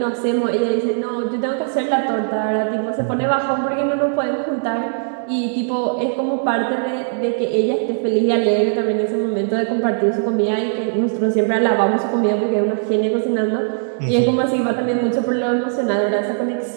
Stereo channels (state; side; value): silent; left; digital silence